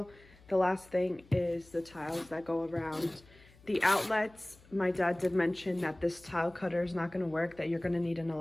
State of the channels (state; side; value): noise; left; hum, 25 dB below the sound